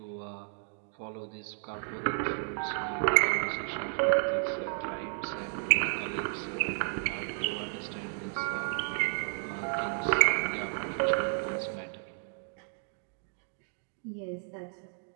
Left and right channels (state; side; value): silent; left; 56 dB below the other